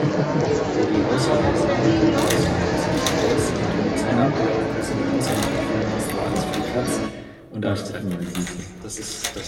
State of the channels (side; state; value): both; identical; correlation 1.00